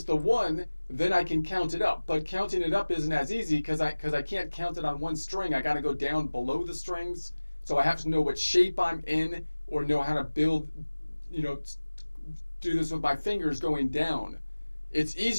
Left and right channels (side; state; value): both; inverted; correlation -1.00